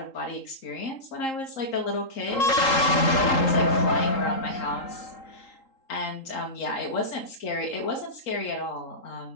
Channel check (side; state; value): right; late; 3.8 ms